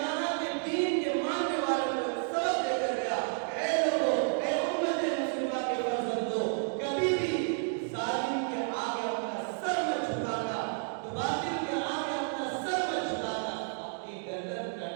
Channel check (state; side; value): silent; left; 57 dB below the other